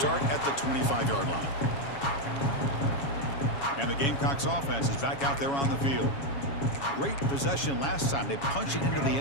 at the 25-yard line. And the Gamecocks offense is back out there on the field. Great possession last time. They punched it into the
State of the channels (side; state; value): right; late; 7.2 ms